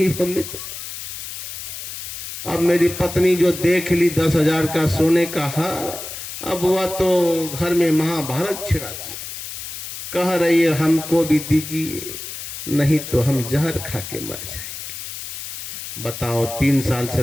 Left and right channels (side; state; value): left; noise; hiss, 9 dB below the sound